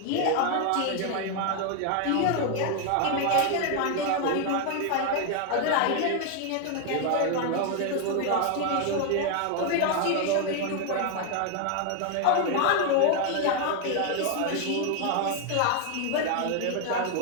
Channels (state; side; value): different; both; correlation 0.01